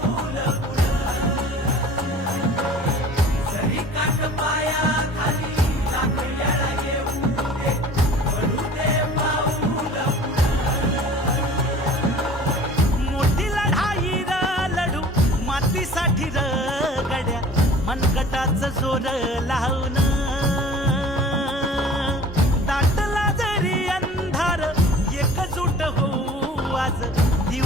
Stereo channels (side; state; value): both; normal; correlation 0.45